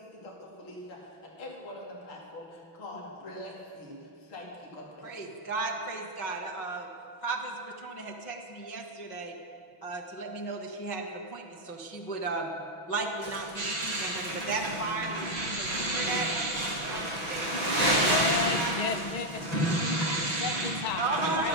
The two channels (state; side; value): late; right; 6.1 ms